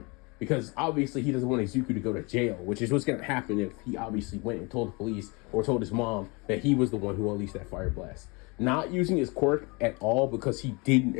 because obviously he doesn't want Izuku to go to jail, which is what's going to happen if he obviously went and told the police or told his mom that he was the one who unleashed that fire blast. Not using his quirk at all because he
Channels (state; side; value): quieter; right; 28.4 dB